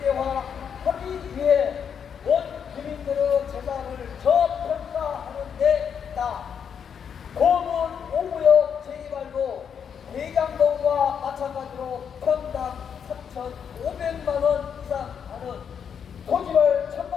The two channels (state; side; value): quieter; right; 7.5 dB